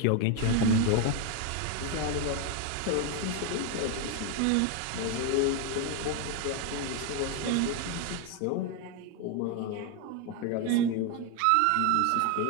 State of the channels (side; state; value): both; different; correlation 0.01